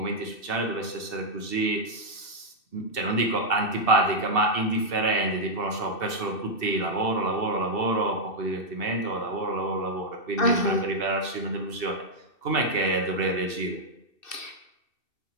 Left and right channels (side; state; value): right; late; 2.6 ms